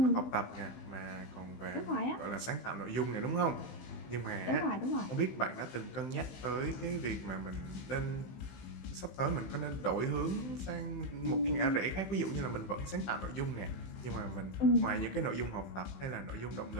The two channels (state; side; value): late; right; 15 ms